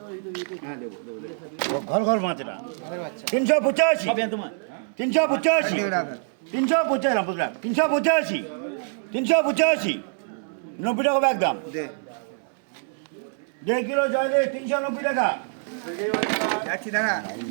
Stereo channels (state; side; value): silent; left; 62 dB below the other